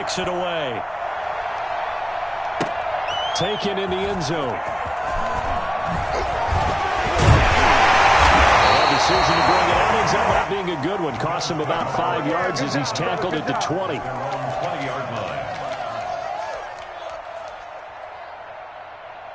it away. Taken in the end zone. Decision to bring it out ends up not being a good one. Cost him about 5 yards as he's tackled at the 20. 20-yard line.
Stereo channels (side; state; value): both; identical; correlation 1.00